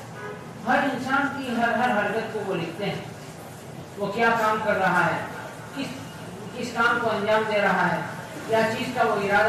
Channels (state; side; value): identical; both; correlation 1.00